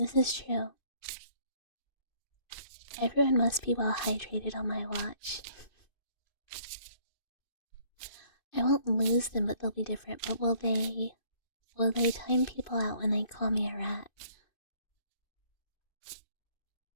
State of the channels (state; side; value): late; right; 2.6 ms